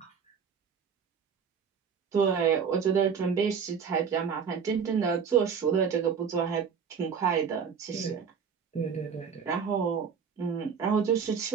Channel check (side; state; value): left; quieter; 6.7 dB